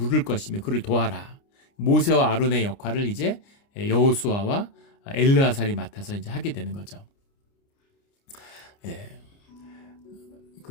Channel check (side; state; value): right; late; 29 ms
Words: 것이며 그를 도와라. 모세와 아론의 역할을 이제 여호수아와 엘르아살이 맡아서 이제 하게 되는 거죠. 예.